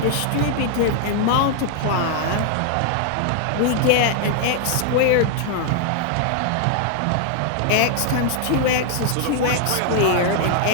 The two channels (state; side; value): different; both; correlation 0.00